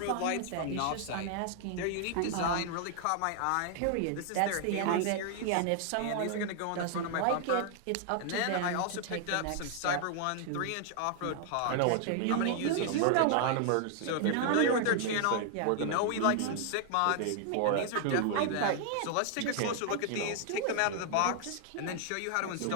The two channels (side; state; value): both; different; correlation 0.00